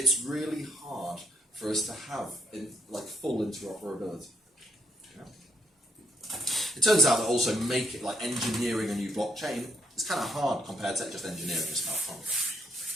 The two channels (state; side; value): normal; both; correlation 0.72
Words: really hard for us to have full interoperability. Yeah. It turns out that also engineering a new blockchain is kind of hard compared to just engineering a smart contract,